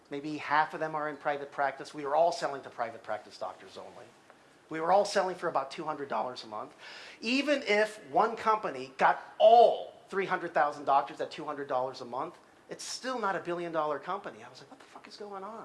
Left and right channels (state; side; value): identical; both; correlation 1.00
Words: Maybe half of them are in private practice. We were all selling to private practice doctors only. We were all selling for about $200 a month. Even if one company got all 300,000 doctors at $200 a month, it's still not a billion-dollar company. I was like, what the fuck is going on?